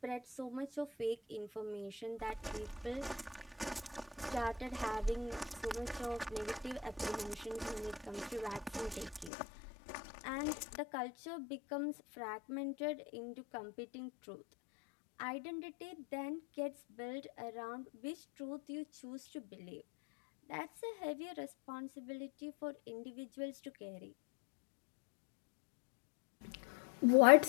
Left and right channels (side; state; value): right; drops out; at 9.3 s